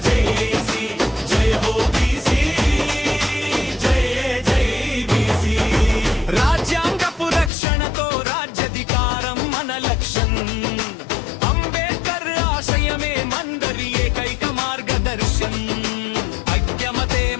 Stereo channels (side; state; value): right; drops out; at 7.5 s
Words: జేసి జయ హో బీసీ జై జై బీసీ రాజ్యాంగపు రక్షణతో రాజ్యాధికారం మన లక్ష్యం అంబేద్కర్ ఆశయమే మందరి ఏకైక మార్గదర్శం ఐక్యమతే